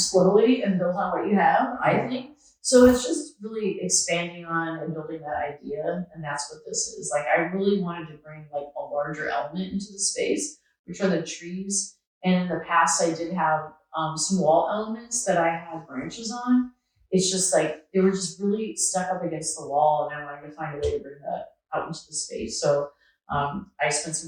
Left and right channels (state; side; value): identical; both; correlation 1.00